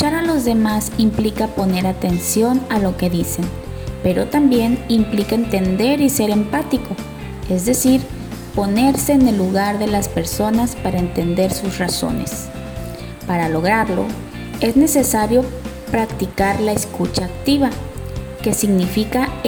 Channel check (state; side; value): identical; both; correlation 1.00